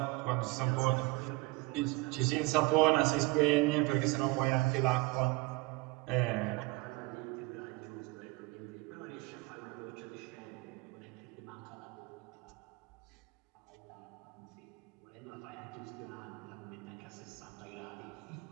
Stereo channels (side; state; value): left; quieter; 23.8 dB